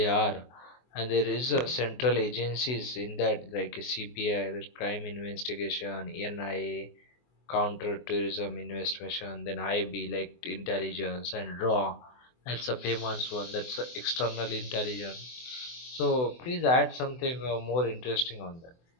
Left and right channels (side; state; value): right; late; 24 ms